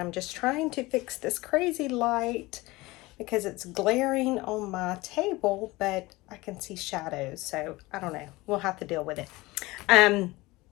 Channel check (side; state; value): right; quieter; 21.0 dB